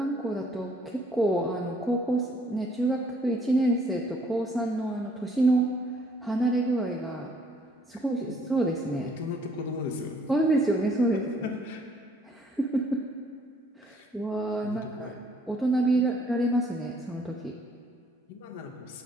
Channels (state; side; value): normal; both; correlation 0.63